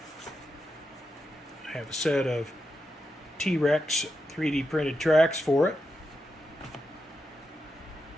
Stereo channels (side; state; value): both; normal; correlation 0.87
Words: I have a set of TRex 3D printed tracks for it.